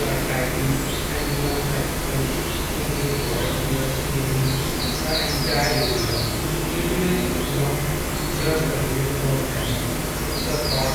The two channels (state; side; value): identical; both; correlation 1.00